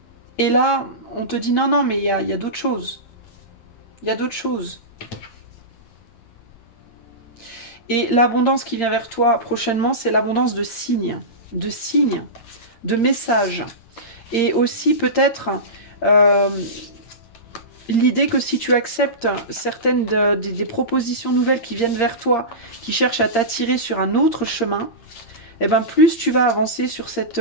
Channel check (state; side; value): late; right; 8.7 ms